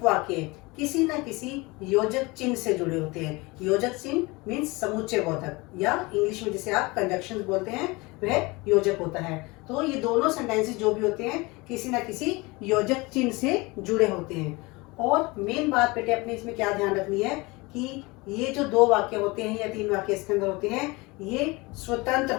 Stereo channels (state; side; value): quieter; right; 24.3 dB